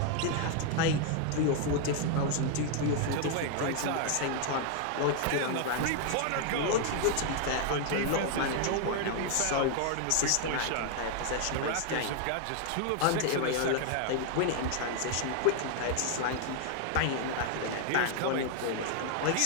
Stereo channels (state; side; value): different; both; correlation 0.00